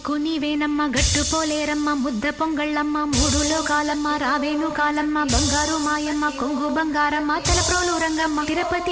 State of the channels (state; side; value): identical; both; correlation 1.00